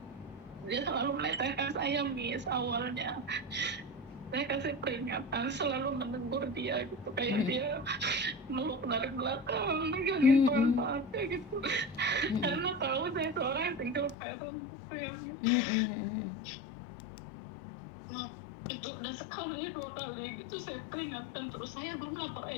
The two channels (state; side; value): drops out; right; at 14.2 s